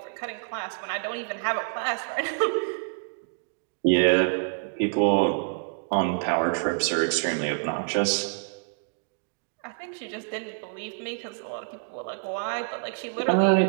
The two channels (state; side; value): silent; left; digital silence